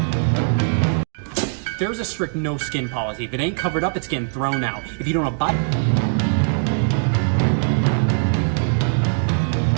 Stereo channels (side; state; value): left; silent; 65 dB below the other